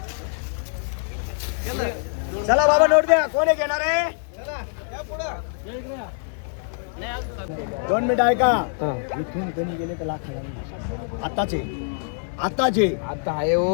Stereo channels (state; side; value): silent; right; digital silence